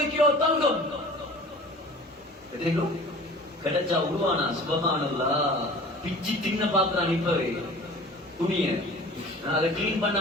கிலோ தங்கம். கிடைச்சா உருவானா? சுப்ஹானல்லாஹ். பிச்சு தின்ன பாக்குறான் இப்பவே துணிய. அதை கிளீன் பண்ண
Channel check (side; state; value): both; normal; correlation 0.43